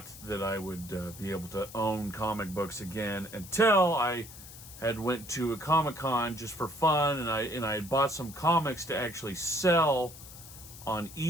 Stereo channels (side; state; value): left; noise; hiss, 16 dB below the sound